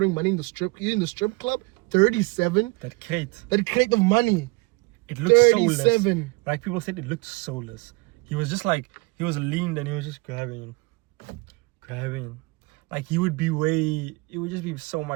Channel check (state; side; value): quieter; left; 26.2 dB